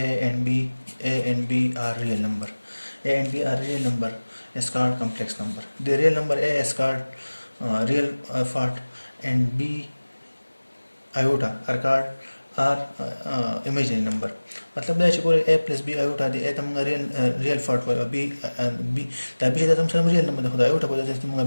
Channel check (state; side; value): inverted; both; correlation -1.00